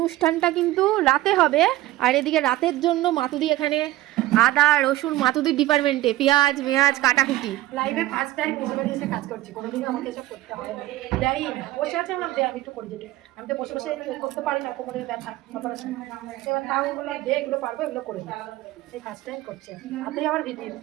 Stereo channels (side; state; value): left; quieter; 16.6 dB